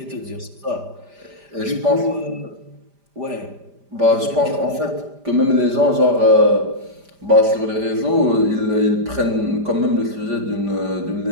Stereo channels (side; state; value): left; late; 5.0 ms